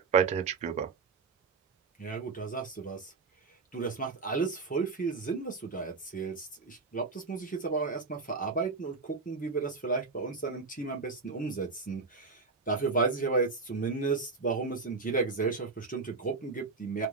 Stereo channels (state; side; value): quieter; left; 4.3 dB